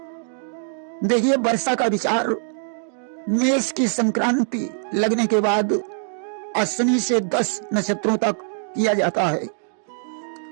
देखिए, वर्षा का विचार मेष की संक्रांति लगने के बाद अश्विनी से 10 नक्षत्रों तक किया जाता है।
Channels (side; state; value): left; silent; digital silence